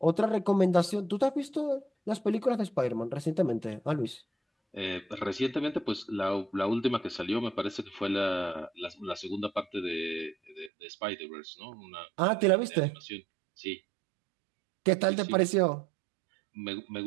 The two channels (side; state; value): left; drops out; at 10.7 s